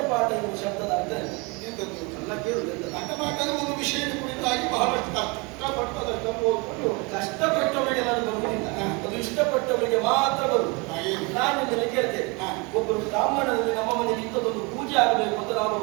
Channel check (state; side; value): quieter; left; 28.6 dB